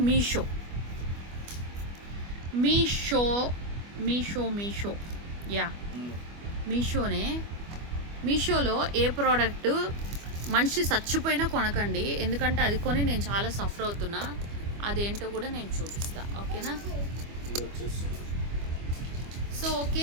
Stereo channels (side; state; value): left; late; 25 ms